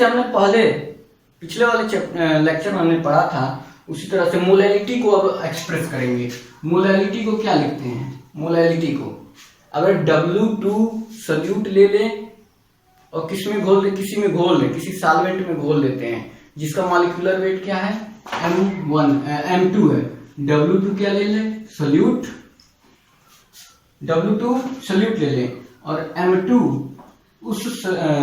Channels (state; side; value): identical; both; correlation 1.00